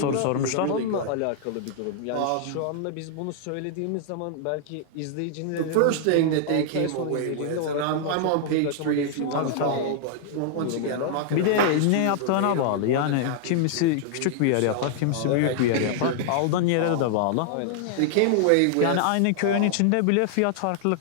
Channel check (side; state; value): both; different; correlation -0.01